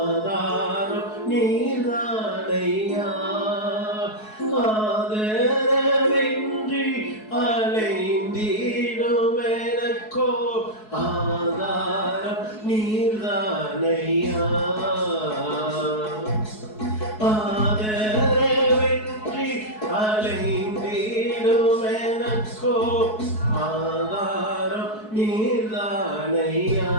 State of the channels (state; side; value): late; right; 4.7 ms